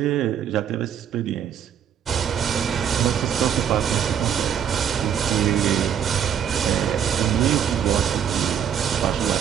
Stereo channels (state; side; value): quieter; left; 8.7 dB